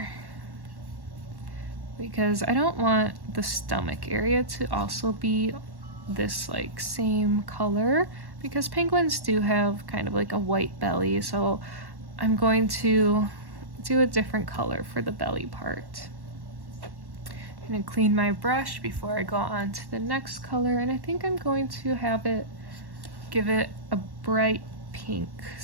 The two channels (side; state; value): left; late; 1.1 ms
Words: because I don't want the stomach area to also be this like same color, because penguins do have kind of like a white belly, so I'm going to do a different color for the belly part. I'm going to clean my brush before I go on to the next color, and I think I'm going to give it a bright pink